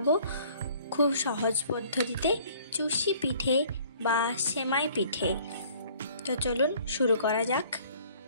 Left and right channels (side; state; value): both; inverted; correlation -0.55